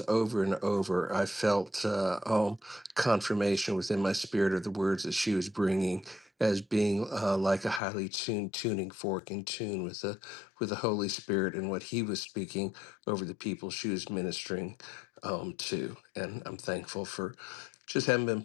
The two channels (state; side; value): drops out; right; at 7.8 s